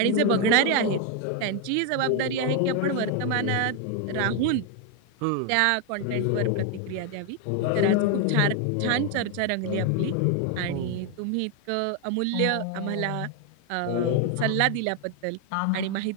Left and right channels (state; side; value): different; both; correlation 0.01